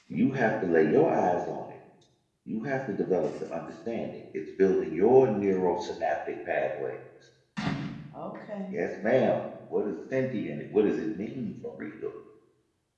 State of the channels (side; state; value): both; identical; correlation 1.00